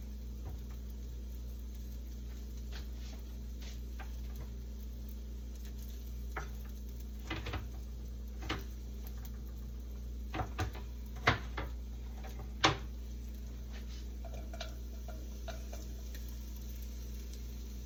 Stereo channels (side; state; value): both; identical; correlation 1.00